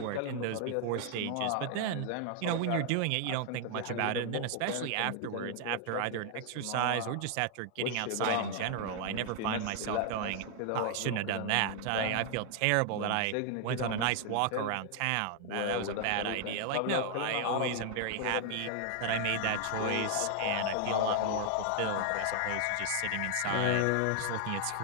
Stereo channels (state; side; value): different; both; correlation 0.00